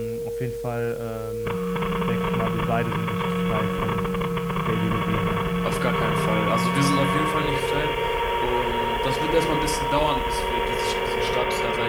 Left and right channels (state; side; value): identical; both; correlation 1.00